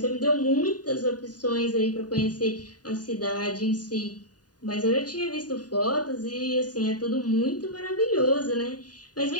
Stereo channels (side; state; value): right; late; 0.68 ms